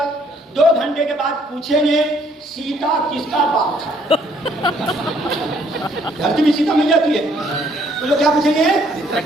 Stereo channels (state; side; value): normal; both; correlation 0.65